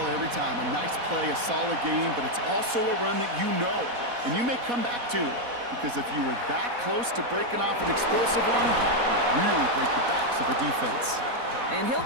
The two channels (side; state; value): left; late; 4.1 ms